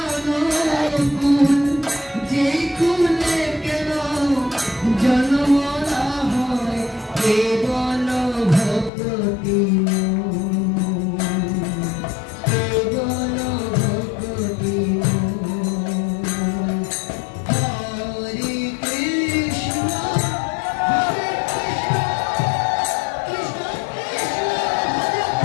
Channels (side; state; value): right; drops out; at 8.9 s